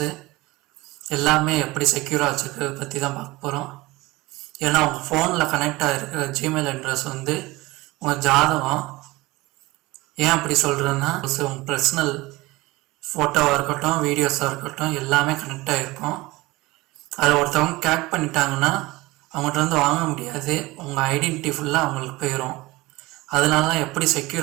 எல்லாமே எப்படி செக்யூராக வச்சுருக்கிறத பற்றி தான் பார்க்க போகிறோம். ஏன்னா உங்கள் ஃபோனில் கனெக்ட் ஆகிருக்கிற ஜிமெயில் அட்ரஸ் வந்து உங்கள் ஜாதகம். ஏன் அப்படி சொல்கிறேன்னா, உங்கள் பர்சனல் ஃபோட்டோவாக இருக்கட்டும், வீடியோஸாக இருக்கட்டும் எல்லாமே கனெக்ட் ஆகிருக்கும். அதை ஒருத்தவங்க கேக் பண்ணிட்டாங்கன்னா அவங்கள்ட்ட வந்து வாங்க முடியாது. உங்கள் ஐடென்டிட்டி ஃபுல்லாக அவங்களுக்கு போயிடும். அதனால தான் எப்படி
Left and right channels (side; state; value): left; quieter; 20.7 dB